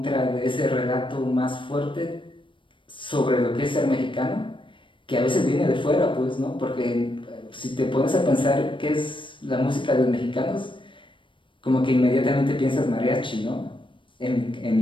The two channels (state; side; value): late; right; 0.24 ms